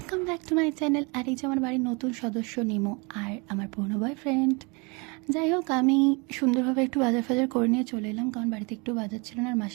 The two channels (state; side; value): quieter; left; 30.0 dB